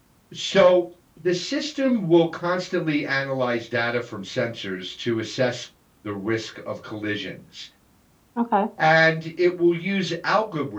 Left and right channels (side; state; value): both; identical; correlation 1.00